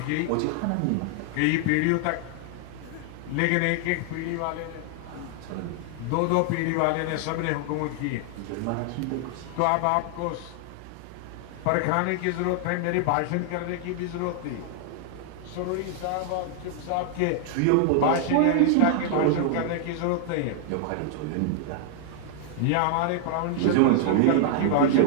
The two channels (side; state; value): both; different; correlation 0.00